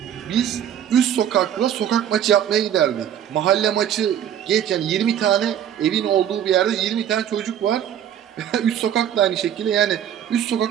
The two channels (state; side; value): quieter; left; 9.9 dB